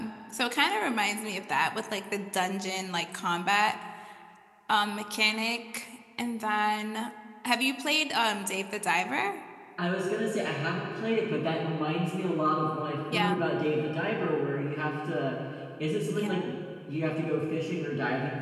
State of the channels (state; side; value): identical; both; correlation 1.00